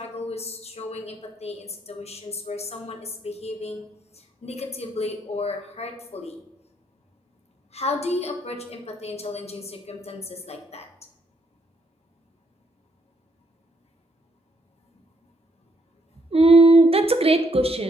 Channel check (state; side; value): normal; both; correlation 0.73